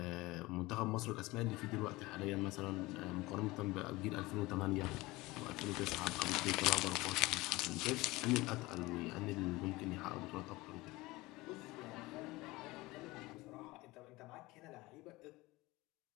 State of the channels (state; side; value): quieter; right; 20.8 dB